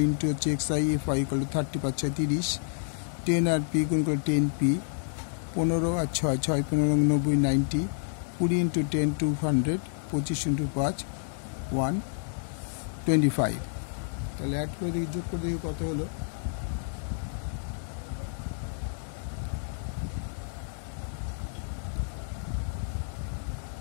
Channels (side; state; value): right; silent; 58 dB below the other